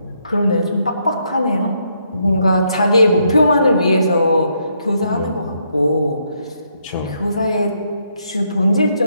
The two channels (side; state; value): both; inverted; correlation -0.75